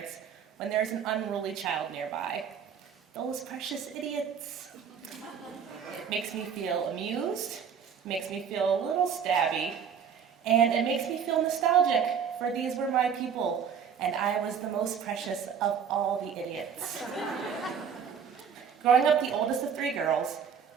when there's an unruly child nearby. Those precious idiots. It makes me feel amused, makes me feel a little stabby, and it makes me feel nostalgic, for these were my people, and I was the most precious of all the idiots. Growing up the oldest of 3 girls,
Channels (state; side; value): quieter; left; 7.3 dB